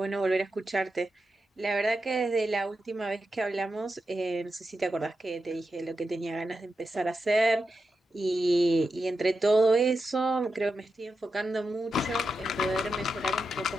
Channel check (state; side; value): normal; both; correlation 0.88